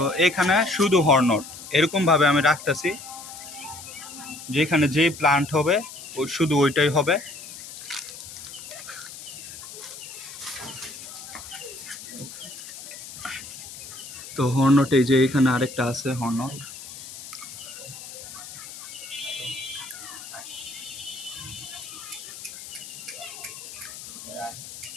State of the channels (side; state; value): left; noise; hiss, 13 dB below the sound